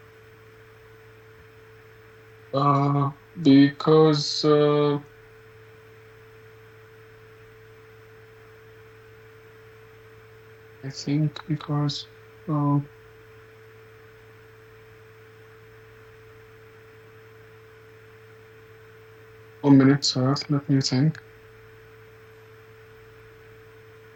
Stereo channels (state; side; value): identical; both; correlation 1.00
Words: Because I think because 1 minute, sir. Let me think.